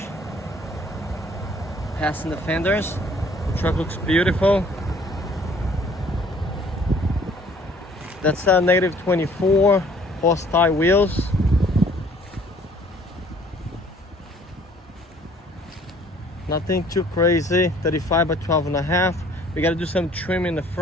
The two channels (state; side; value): normal; both; correlation 0.57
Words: passing the fenders. The truck looks beautiful. That's a negative 24 horsepower wheels. Nothing too crazy. 35 by 12.5. We got to do some trim in the